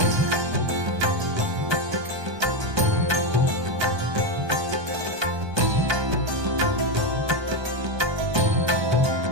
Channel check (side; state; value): left; late; 1.2 ms